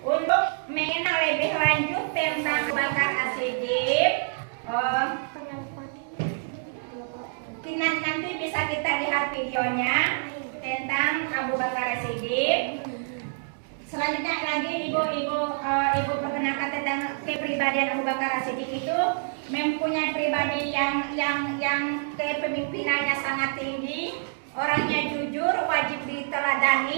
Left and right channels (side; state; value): left; silent; digital silence